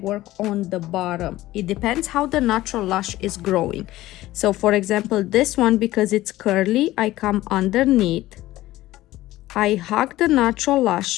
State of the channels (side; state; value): right; quieter; 16.3 dB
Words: on the bottom. It depends how the natural lash is growing. So for example, this one, because it's curly, I come underneath, I hug the natural